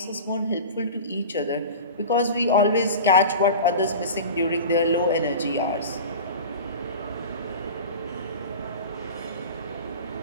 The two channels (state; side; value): inverted; both; correlation -0.33